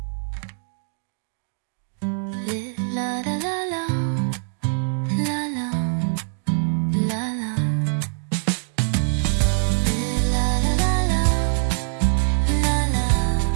Les la la la la, la la, la la. Les la la la la, la la,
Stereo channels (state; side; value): silent; left; digital silence